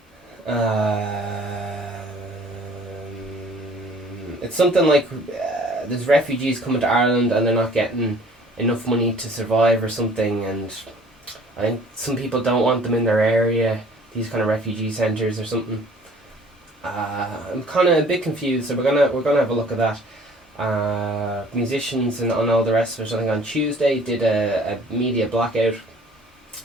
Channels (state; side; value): normal; both; correlation 0.53